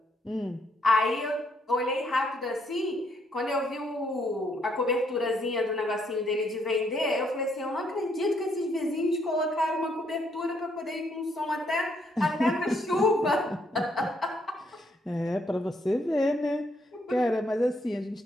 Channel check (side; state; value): both; normal; correlation 0.72